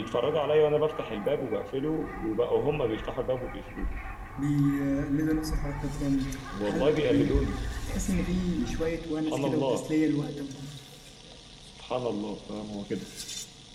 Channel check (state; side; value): identical; both; correlation 1.00